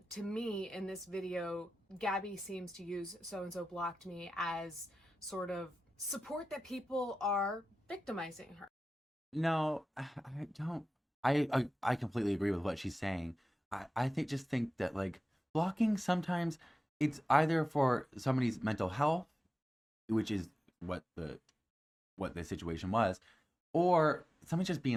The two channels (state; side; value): normal; both; correlation 0.94